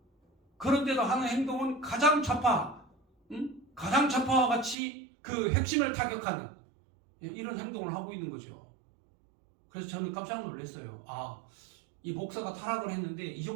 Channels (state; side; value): drops out; left; at 4.8 s